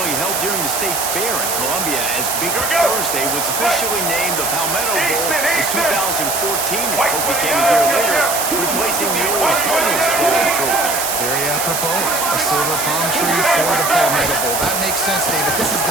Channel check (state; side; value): noise; right; hiss, 1 dB below the sound